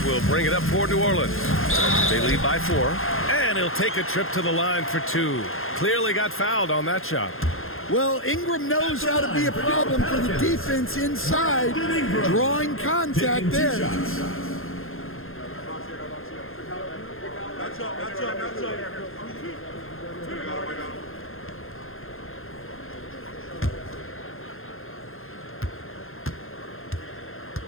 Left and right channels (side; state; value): right; late; 0.60 ms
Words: will bring it up for New Orleans. They lead by 4. And he'll take a trip to the line for 2. Clearly got fouled on that shot. Well, Ingram knows how to be a problem for the defense inside, drawing contact there.